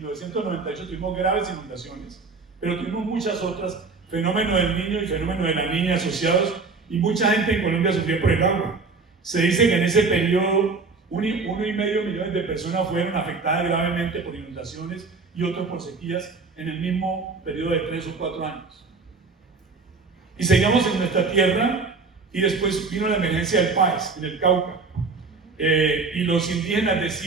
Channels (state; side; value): quieter; left; 4.3 dB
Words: tuvimos graves inundaciones, pero tuvimos muchas otras, fenómeno del niño y fenómeno de la niña asociados, y mucha gente en Colombia sufrió por el agua. Se dice que en ese periodo 1,5 millones de personas fueron afectadas gravemente por inundaciones y otros por sequías en el mismo periodo de 3 o 4 años. Y seguíamos en nuestra tierra y después vino la emergencia del Páez, en el Cauca. y los indígenas